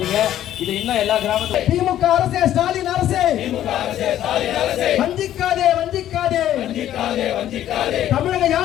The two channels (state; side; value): quieter; right; 12.0 dB